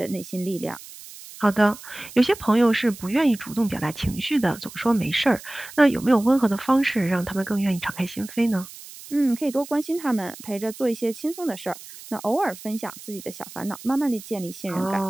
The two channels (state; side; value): noise; right; hiss, 16 dB below the sound